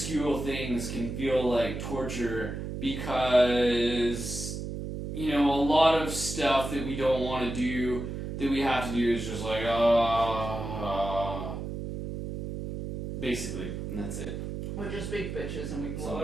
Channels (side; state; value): right; noise; hum, 6 dB below the sound